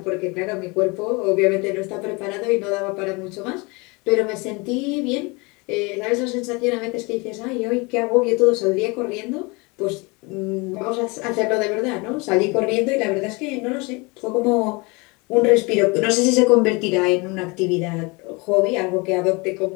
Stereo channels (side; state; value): right; quieter; 27.3 dB